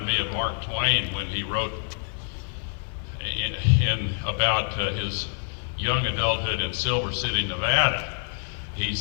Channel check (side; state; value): right; silent; 57 dB below the other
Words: me of Mark Twain when he wrote about his young adulthood in Silver City, Nevada. He